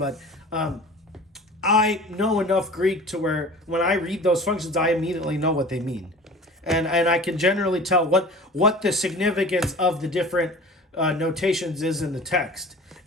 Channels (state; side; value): normal; both; correlation 0.40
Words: I know enough Greek to where when I read those functions, I immediately know what they mean. and I can generally tell what the significance of the different notations is in the text.